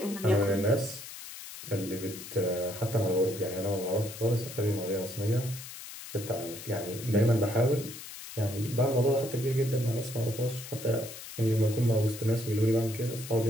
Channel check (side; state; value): left; noise; hiss, 12 dB below the sound